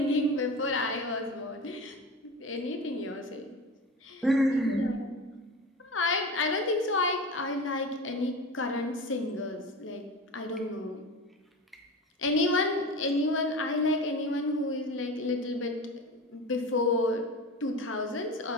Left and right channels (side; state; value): both; normal; correlation 0.29